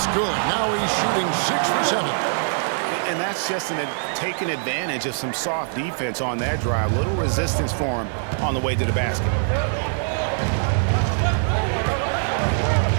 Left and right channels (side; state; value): left; silent; digital silence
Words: good. Now he's shooting 6 for 7. And that's just taking advantage of some soft defense on that drive. Little resistance for him on the way to the basket.